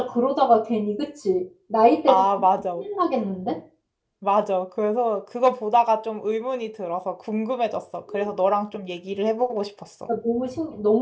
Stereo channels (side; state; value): both; identical; correlation 1.00